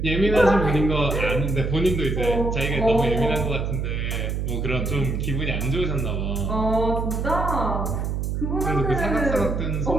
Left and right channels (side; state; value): right; noise; hum, 1 dB below the sound